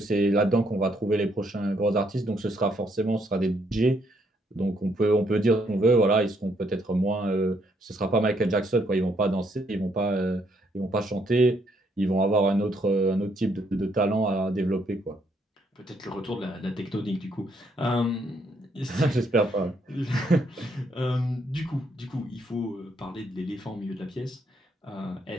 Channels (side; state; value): both; normal; correlation 0.71